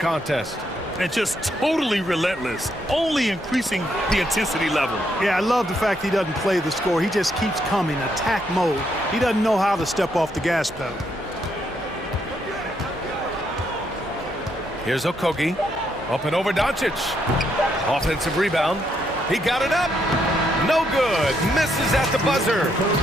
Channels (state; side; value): normal; both; correlation 0.76